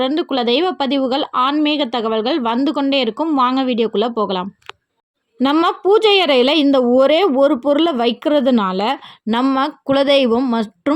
குலதெய்வ பதிவுகள், ஆன்மீக தகவல்கள் வந்து கொண்டே இருக்கும். வாங்க வீடியோக்குள்ளே போகலாம். நம்ம பூஜை அறையில் இந்த ஒரே ஒரு பொருளை வைக்கிறதுனால நம்ம குலதெய்வம்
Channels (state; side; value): identical; both; correlation 1.00